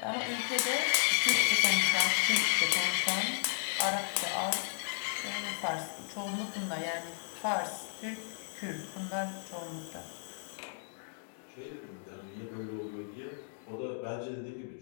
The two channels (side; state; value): right; silent; digital silence